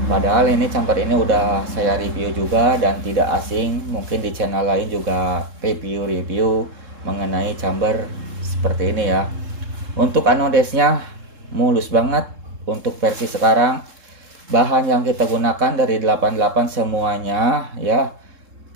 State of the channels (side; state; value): left; late; 3.7 ms